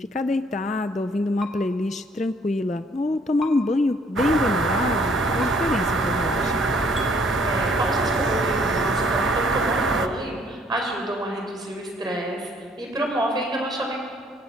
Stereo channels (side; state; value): both; normal; correlation 0.63